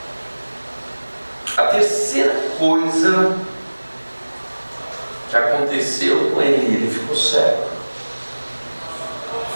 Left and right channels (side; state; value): both; inverted; correlation -1.00